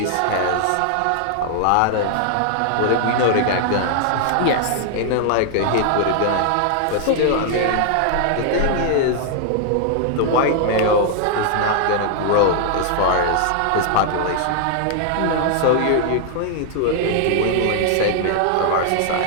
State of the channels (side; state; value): both; different; correlation 0.00